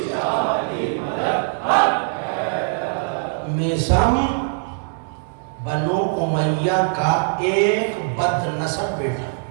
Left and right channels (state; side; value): silent; left; digital silence